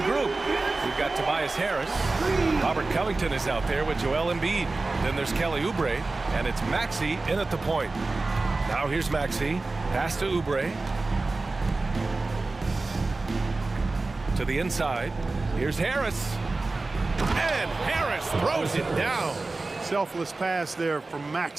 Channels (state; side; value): quieter; left; 3.4 dB